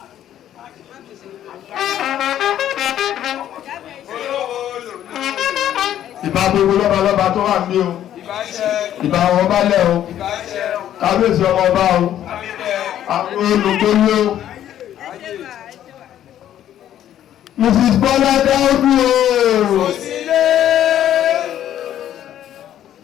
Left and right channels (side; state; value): right; quieter; 11.3 dB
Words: Ìbá gbogbo lọ́balọ́ba tó wà ní o, ìbá àwọn ọba lẹ̀ o, kábíyèsí ọmọ ọba o, àwọn olùgbòlò o. Mrs. Bọ́lá Dáúdú o.